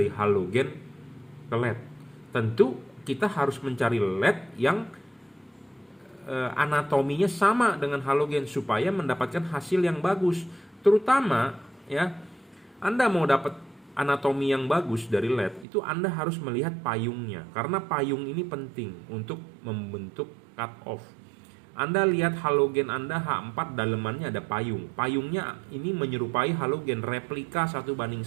halogen ke LED. Tentu kita harus mencari LED yang anatominya sama dengan halogen supaya mendapatkan hasil yang bagus. Terutama ya, Anda mau dapat anatomi yang bagus dari LED, itu Anda harus melihat payungnya. Karena payung ini penting untuk membentuk cut off. Anda lihat halogen Anda H4, dalemannya ada payung. Payungnya ini menyerupai halogen, replika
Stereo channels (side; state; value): left; drops out; at 15.7 s